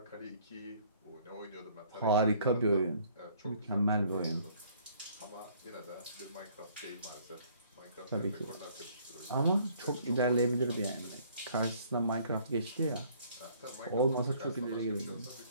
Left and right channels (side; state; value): both; inverted; correlation -0.59